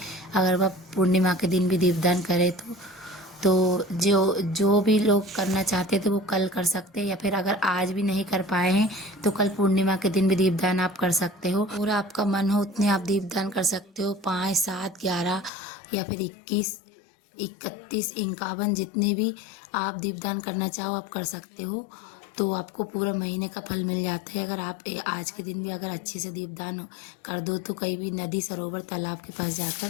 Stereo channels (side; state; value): right; drops out; at 15.5 s